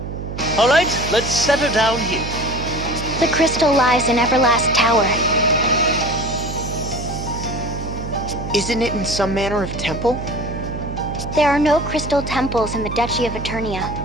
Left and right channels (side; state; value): right; noise; hum, 7 dB below the sound